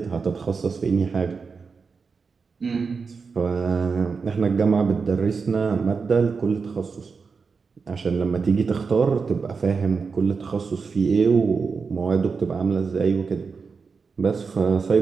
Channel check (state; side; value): quieter; left; 5.1 dB